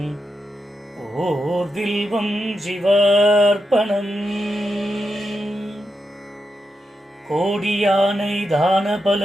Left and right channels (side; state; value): both; normal; correlation 0.86